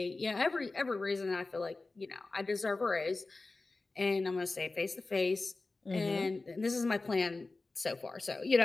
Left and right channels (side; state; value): right; quieter; 3.4 dB